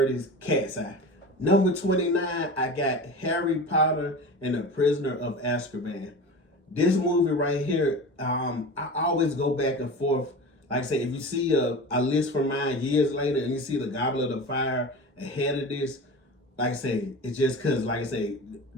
is Cat's Eye. Number 29, I got Harry Potter and the Prisoner of Azkaban. This movie right here, I always go back and forth. Like I say, if you see a list from mine years later and you see the Goblet of Fire ahead of this, like I say, it's just because, like I say,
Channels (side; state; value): both; normal; correlation 0.32